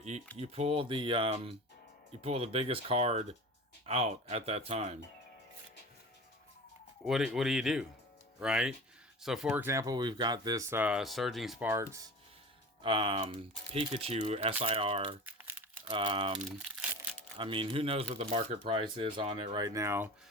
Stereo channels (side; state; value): both; normal; correlation 0.34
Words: You pull the biggest card out at that time. What do you do, right? So, for example, we've got this Surging Sparks Pikachu SIR. I mean, who knows what the market price is on it right now?